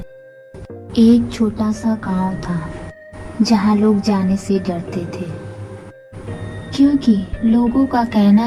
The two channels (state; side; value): identical; both; correlation 1.00